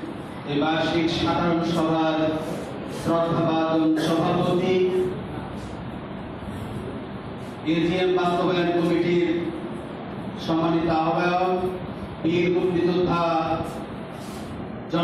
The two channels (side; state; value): both; identical; correlation 1.00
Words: এই বার্ষিক সাধারণ সভার শ্রদ্ধাভাজন সভাপতি, এজিএম বাস্তবায়ন কমিটির সম্মানিত আহ্বায়ক, বীর মুক্তিযোদ্ধা